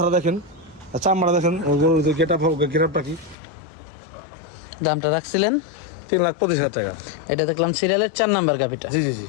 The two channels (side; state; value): right; drops out; at 3.4 s